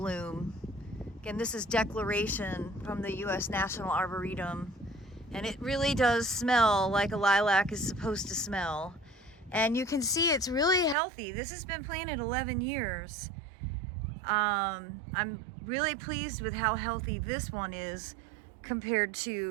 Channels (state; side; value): drops out; left; at 11.0 s